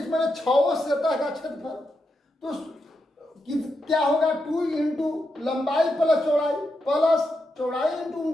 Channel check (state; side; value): normal; both; correlation 0.85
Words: में 6 सतह का क्षेत्रफल, तो क्या होगा 2 इंटू लंबाई प्लस चौड़ाई प्लस चौड़ाई इंटू